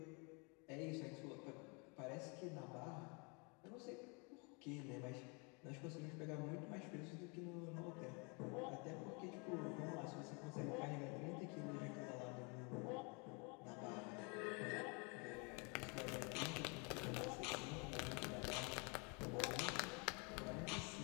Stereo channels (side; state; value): right; quieter; 32.9 dB